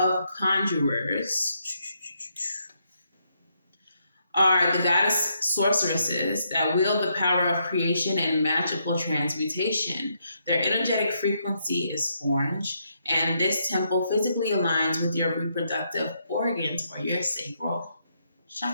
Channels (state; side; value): inverted; both; correlation -0.77